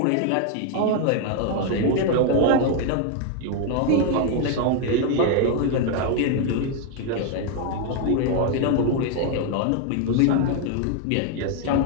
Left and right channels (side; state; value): both; different; correlation 0.01